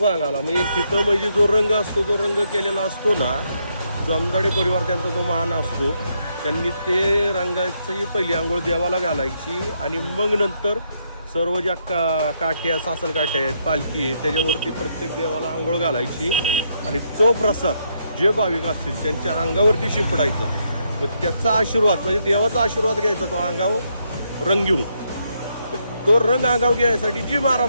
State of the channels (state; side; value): inverted; both; correlation -0.77